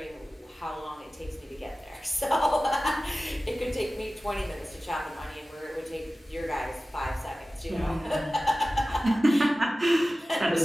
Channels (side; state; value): both; normal; correlation 0.96